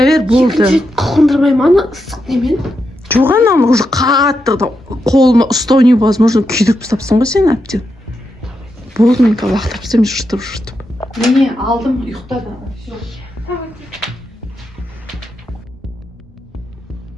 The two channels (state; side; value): normal; both; correlation 0.85